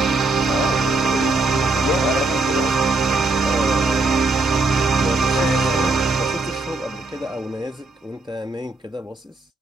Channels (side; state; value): left; quieter; 3.2 dB